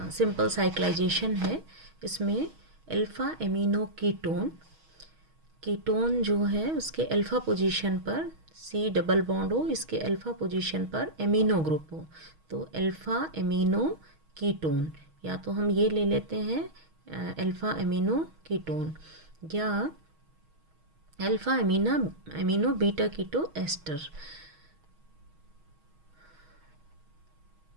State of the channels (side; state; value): left; late; 6.3 ms